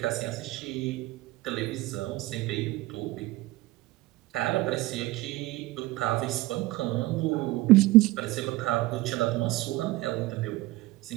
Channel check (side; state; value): left; quieter; 19.1 dB